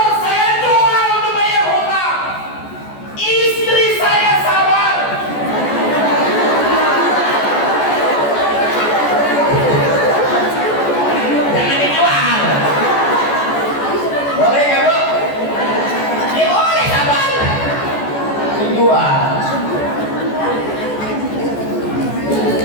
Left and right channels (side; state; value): right; late; 14 ms